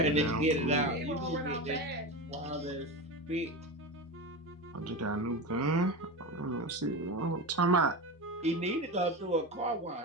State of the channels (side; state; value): both; normal; correlation 0.22